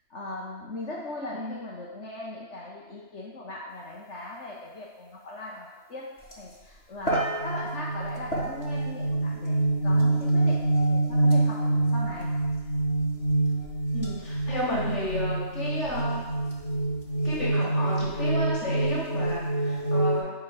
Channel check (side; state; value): right; late; 3.0 ms